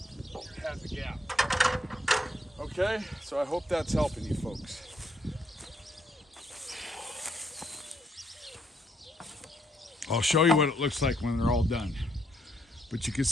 It had the gap. Okay, so I hope that's helping you folks. I'll show you what it looks like when they're all done. But you can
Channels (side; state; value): both; normal; correlation 0.73